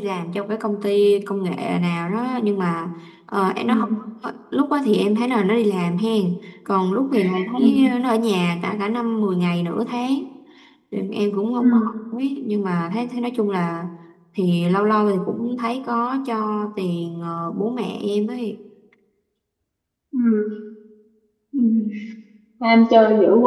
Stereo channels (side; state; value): both; identical; correlation 1.00